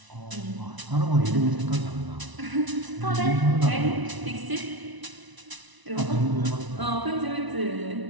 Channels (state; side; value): late; left; 1.0 ms